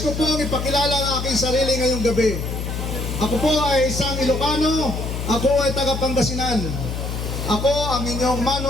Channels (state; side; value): noise; left; hum, 5 dB below the sound